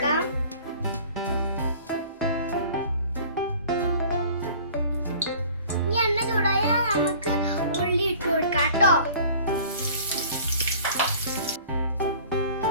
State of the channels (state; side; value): inverted; both; correlation -0.47